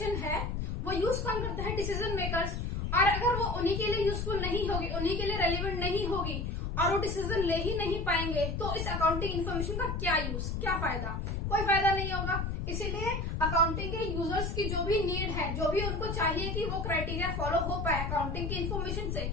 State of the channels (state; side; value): noise; left; rumble, 2 dB below the sound